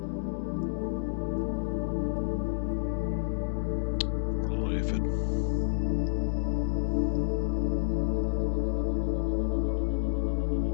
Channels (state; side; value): silent; right; digital silence